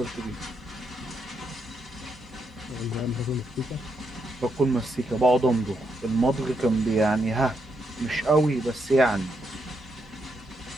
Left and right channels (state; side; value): normal; both; correlation 0.80